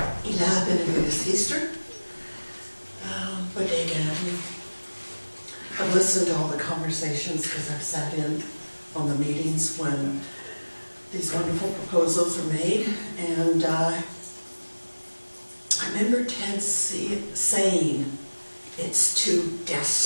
Ila Benavides Easter, Bodega Avenue. I've listened to all the conversations because I've sat in on the meetings when these wonderful proposals are made, and I remember Ted saying it's too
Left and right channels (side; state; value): both; inverted; correlation -1.00